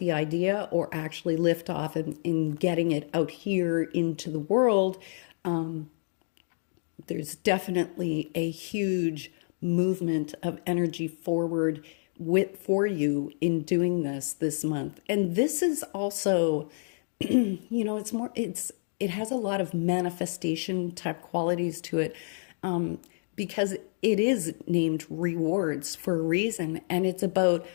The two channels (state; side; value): silent; right; digital silence